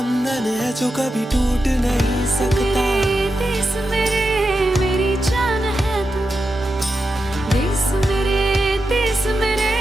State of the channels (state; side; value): normal; both; correlation 0.88